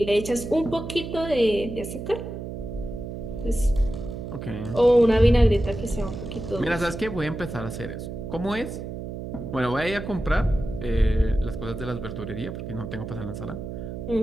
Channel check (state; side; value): noise; right; hum, 7 dB below the sound